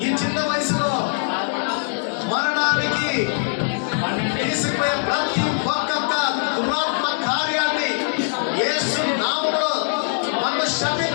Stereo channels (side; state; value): right; silent; 63 dB below the other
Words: ఈ చిన్న వయసులో మరణానికి తీసుకుపోయే ప్రతి ఒక్క దురాత్మ కార్యాన్ని యేసు నామములో మనం